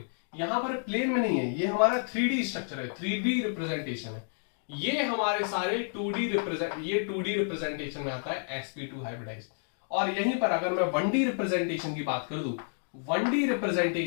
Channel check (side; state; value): right; silent; digital silence